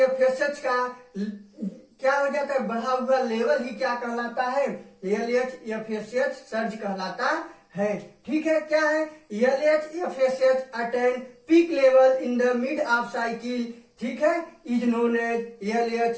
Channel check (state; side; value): identical; both; correlation 1.00